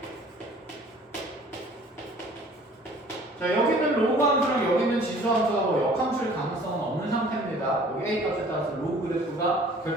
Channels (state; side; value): normal; both; correlation 0.52